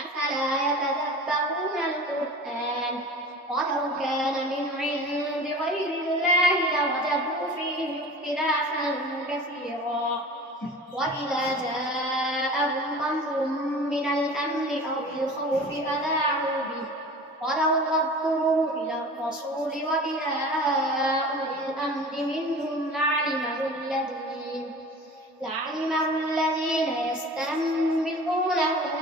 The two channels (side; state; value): both; normal; correlation 0.39